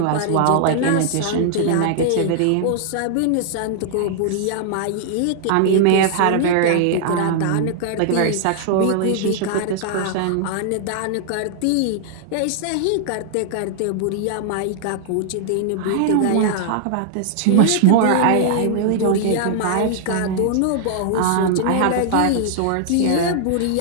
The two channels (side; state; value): both; different; correlation -0.01